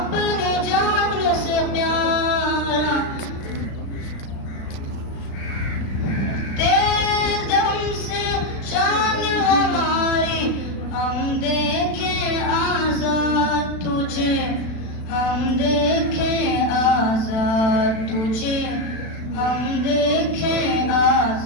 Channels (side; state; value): right; late; 36 ms